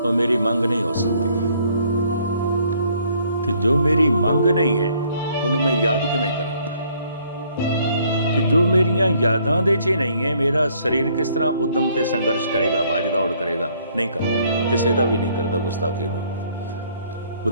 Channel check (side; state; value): both; inverted; correlation -0.64